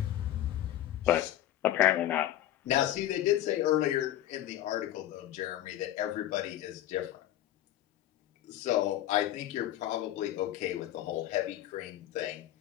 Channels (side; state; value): right; quieter; 13.2 dB